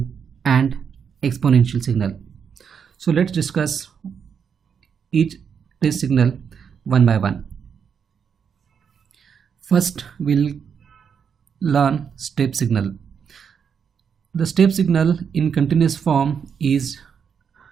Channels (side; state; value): left; quieter; 7.0 dB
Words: and exponential signal. So let's discuss each test signal one by one. First, we'll learn step signal. The step signal in continuous form is